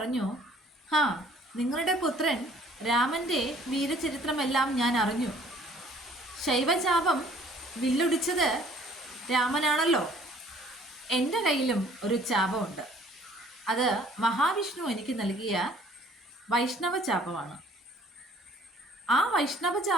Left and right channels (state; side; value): normal; both; correlation 0.56